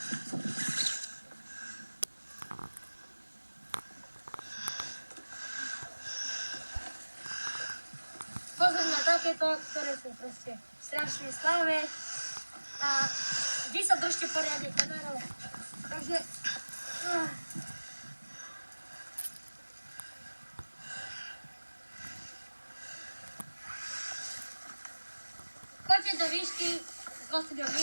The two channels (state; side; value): inverted; both; correlation -1.00